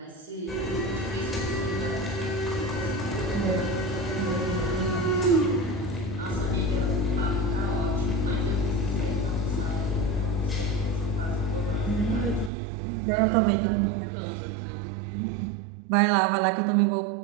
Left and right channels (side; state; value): left; drops out; at 12.5 s